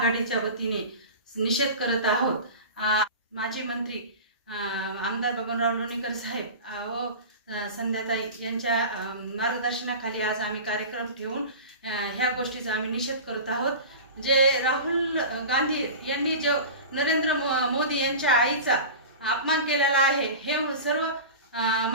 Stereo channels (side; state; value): both; inverted; correlation -0.32